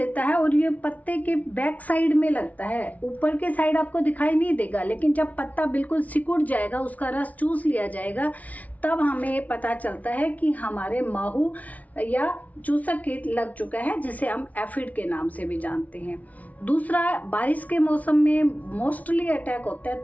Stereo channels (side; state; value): right; late; 0.071 ms